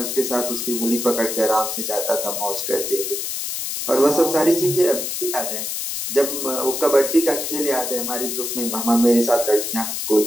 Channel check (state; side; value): noise; left; hiss, 3 dB below the sound